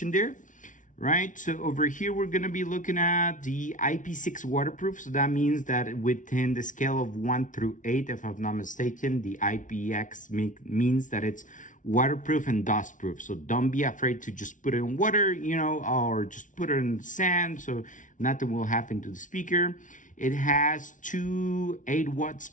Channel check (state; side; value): late; right; 0.37 ms